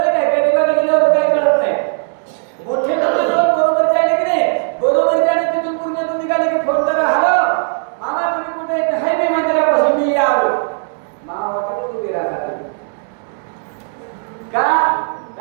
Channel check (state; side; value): silent; left; digital silence